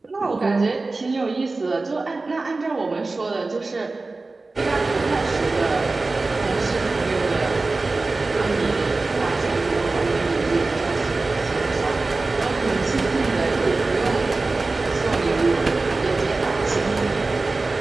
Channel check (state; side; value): quieter; left; 3.5 dB